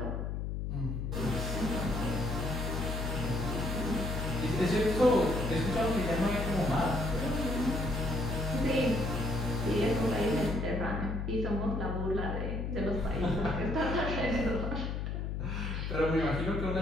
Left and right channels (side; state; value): left; noise; hum, 2 dB below the sound